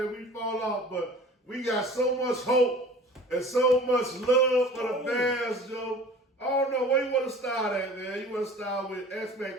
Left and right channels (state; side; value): normal; both; correlation 0.44